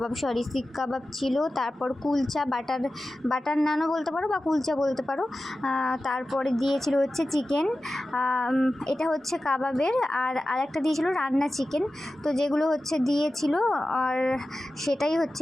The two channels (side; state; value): both; normal; correlation 0.94